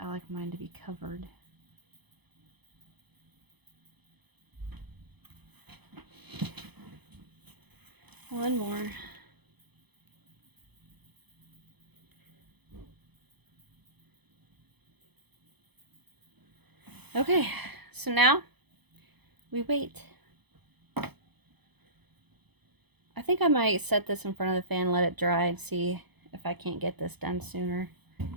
like mine to be covered. One more. Okay, so now we wait. I think I might set this in front of the fan, let it dry, and see if I can't get this done sooner.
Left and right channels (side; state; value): left; late; 0.98 ms